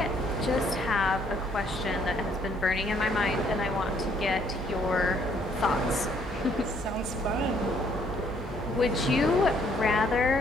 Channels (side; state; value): both; normal; correlation 0.66